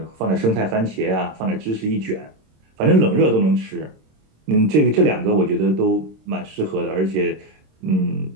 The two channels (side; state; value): left; late; 26 ms